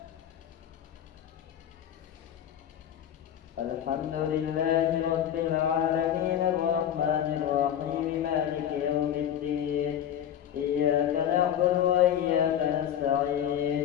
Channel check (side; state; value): right; quieter; 10.1 dB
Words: الحمد لله رب العالمين الرحمن الرحيم مالك يوم الدين. إياك نعبد وإياك نستعين.